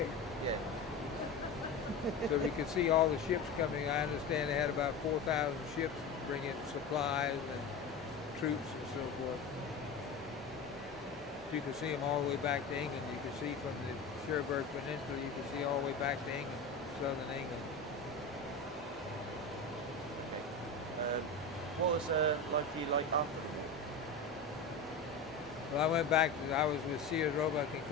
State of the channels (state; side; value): quieter; right; 3.8 dB